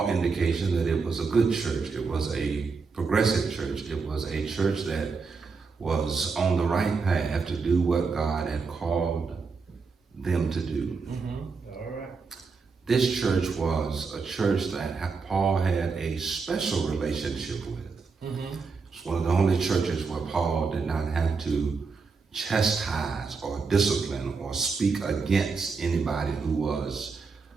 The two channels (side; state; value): left; quieter; 4.8 dB